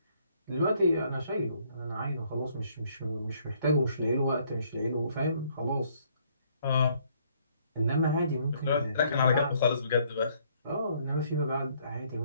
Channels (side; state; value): both; inverted; correlation -0.66